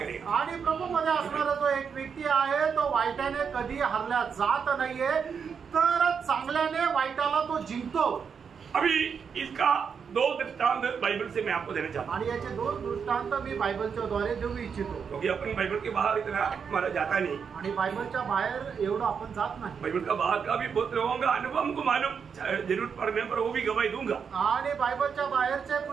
आणि प्रभू मध्ये असणारा जो एक व्यक्ती आहे तो वाईटाने कधी हरल्या जात नाहीये तर चांगल्याने वाईटाला तो जिंकतो. अभी इसका 2 दृष्टांत बाइबल से मैं आपको देना चाहता हूँ. आणि याचे 2 दृष्टांत मी बायबलच्या द्वारे देऊ इच्छितो. क्योंकि अपन बाइबल के बाहर इतना हमारा जाता नहीं. आणि बायबलच्या बाहेर एवढं आपण जात नाही. बाइबल का बाहर का भी बहुत लोगों का अनुभव हमको मालूम, जरूरत पड़ने पर वो भी गवाही दूंगा. आणि बायबलच्या बाहेरचे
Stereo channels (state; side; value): quieter; left; 6.5 dB